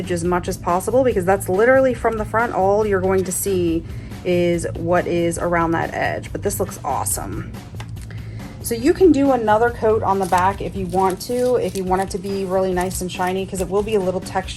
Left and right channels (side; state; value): both; identical; correlation 1.00